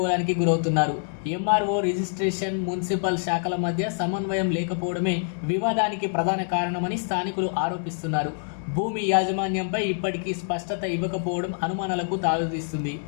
గురవుతున్నారు. ఎంఆర్ఓ, రిజిస్ట్రేషన్, మున్సిపల్ శాఖల మధ్య సమన్వయం లేకపోవడమే వివాదానికి ప్రధాన కారణమని స్థానికులు ఆరోపిస్తున్నారు. భూమి యాజమాన్యంపై ఇప్పటికీ స్పష్టత ఇవ్వకపోవడం అనుమానాలకు తావిస్తుంది.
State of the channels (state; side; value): silent; right; digital silence